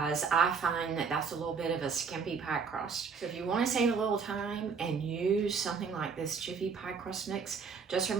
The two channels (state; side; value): quieter; left; 5.7 dB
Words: I find that that's a little bit of a skimpy pie crust. So if you want to save a little time and use something like this Jiffy pie crust mix, just